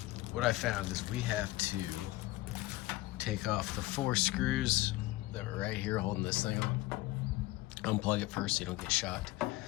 What I found is we have to take off the 4 screws that were right here holding this thing on. Unplug it first so you don't get shocked.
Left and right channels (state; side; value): quieter; right; 18.3 dB